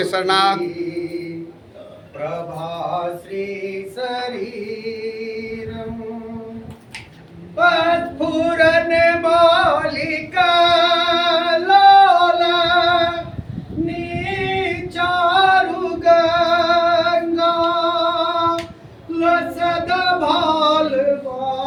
प्रभाश्री शरीरम पस्फुरन मौलिका लोला नीचारु गंगा लसद भाल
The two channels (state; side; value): identical; both; correlation 1.00